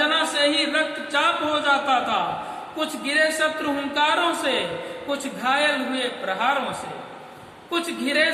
से ही रक्तचाप हो जाता था। कुछ गिरे शत्रु हुंकारों से, कुछ घायल हुए प्रहारों से। कुछ घिरे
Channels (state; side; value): identical; both; correlation 1.00